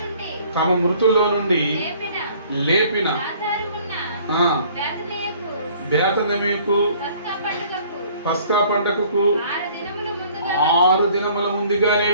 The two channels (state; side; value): inverted; both; correlation -0.56